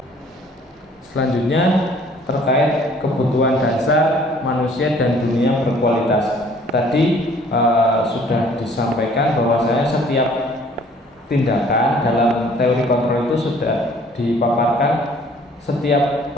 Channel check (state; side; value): normal; both; correlation 0.56